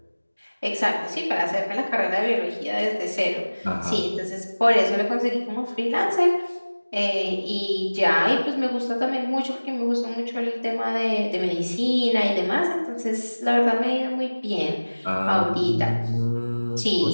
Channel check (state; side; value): inverted; both; correlation -1.00